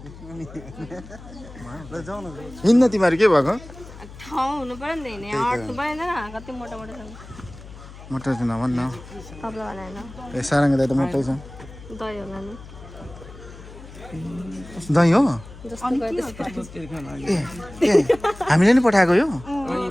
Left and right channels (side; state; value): left; noise; hum, 17 dB below the sound